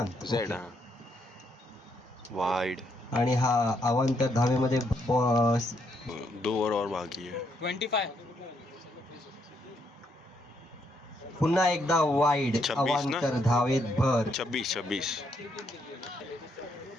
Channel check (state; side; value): normal; both; correlation 0.75